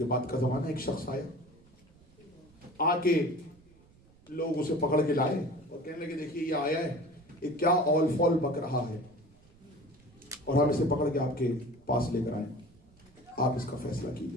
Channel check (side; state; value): right; noise; rumble, 27 dB below the sound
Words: بعد کا زمانہ، ایک شخص آیا، آ کے لوگ اسے پکڑ کے لائے اور کہنے لگے دیکھیے یہ آیا ہے، یہ کیا اول فول بک رہا ہے اور ہم اسے پکڑ کے آپ کے پاس لے کر آئے، آپ اس کا فیصلہ